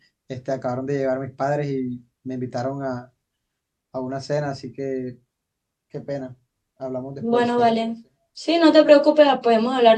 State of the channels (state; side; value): identical; both; correlation 1.00